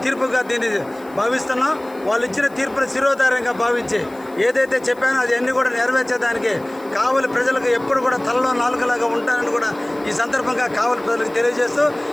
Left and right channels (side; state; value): left; noise; hiss, 27 dB below the sound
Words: తీర్పుగా దీన్ని భావిస్తున్నాం. వాళ్ళు ఇచ్చిన తీర్పును శిరోధార్యంగా భావించి ఏదైతే చెప్పానో అది అన్నీ కూడా నెరవేర్చేదానికి కావలి ప్రజలకు ఎప్పుడు కూడా తలలో నాలుగులాగా ఉంటానని కూడా ఈ సందర్భంగా కావలి ప్రజలకు తెలియజేస్తూ